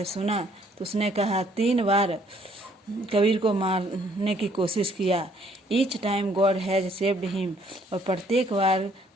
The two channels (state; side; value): normal; both; correlation 0.64